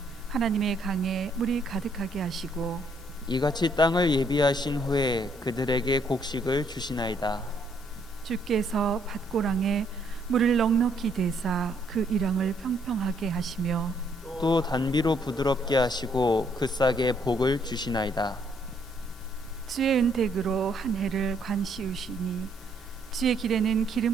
하나님의 강에 물이 가득하게 하시고 이같이 땅을 예비하신 후에 그들에게 곡식을 주시나이다. 주께서 밭고랑에 물을 넉넉히 대사 그 이랑을 평평하게 하시며 또 단비로 부드럽게 하시고 그 싹에 복을 주시나이다. 주의 은택으로 한 해를 관시우시니 주의 길에는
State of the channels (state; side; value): normal; both; correlation 0.69